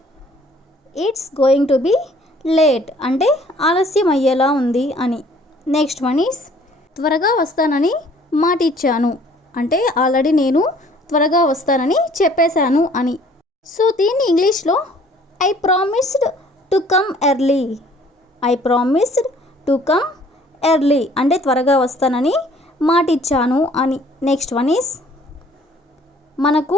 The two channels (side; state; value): both; normal; correlation 0.56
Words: It's going to be late అంటే ఆలస్యం అయ్యేలా ఉంది అని. నెక్స్ట్ వన్ ఈస్ త్వరగా వస్తానని మాట ఇచ్చాను అంటే ఆల్రెడీ నేను త్వరగా వస్తానని చెప్పేశాను అని. సో దీన్ని ఇంగ్లీష్లో I promised to come early. I promised to come early అంటే త్వరగా వస్తానని మాట ఇచ్చాను అని. నెక్స్ట్ వన్ ఈస్ మనకు